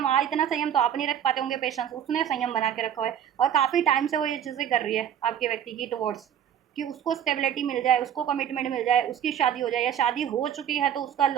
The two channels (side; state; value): left; quieter; 9.5 dB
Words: इतना संयम तो आप नहीं रख पाते होंगे, पेशेंस, उसने संयम बना के रखा है, और काफ़ी टाइम से वो ये चीज़ें कर रही है आपके व्यक्ति की टुवर्ड्स, कि उसको स्टेबिलिटी मिल जाए, उसको कमिटमेंट मिल जाए, उसकी शादी हो जाए, या शादी हो चुकी है तो उसका